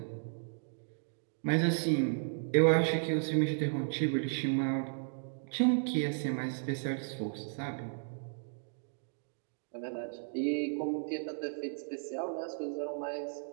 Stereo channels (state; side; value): silent; left; digital silence